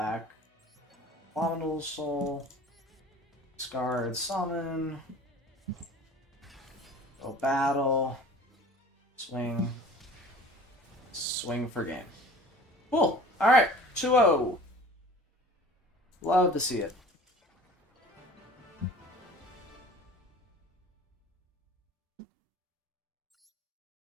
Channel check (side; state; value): both; normal; correlation 0.44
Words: Abominable Soul. Discard summon. Go battle. Swing. Swing for game. Cool. Alright. 2-0. Love to see it.